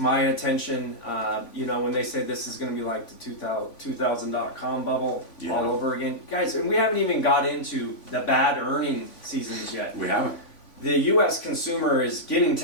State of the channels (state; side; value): late; right; 3.5 ms